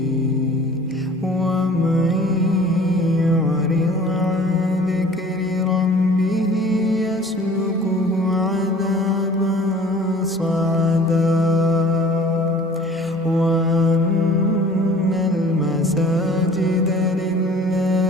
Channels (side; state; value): both; normal; correlation 0.48